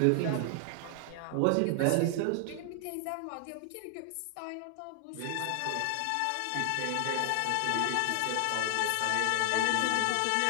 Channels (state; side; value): different; both; correlation 0.00